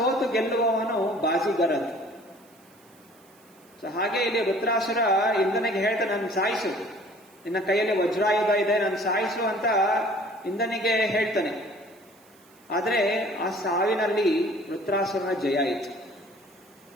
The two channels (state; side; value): noise; right; hiss, 29 dB below the sound